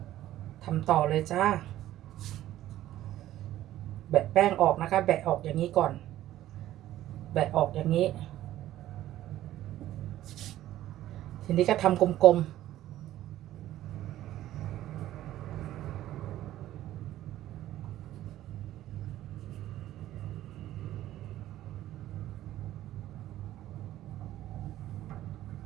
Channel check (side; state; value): left; quieter; 13.7 dB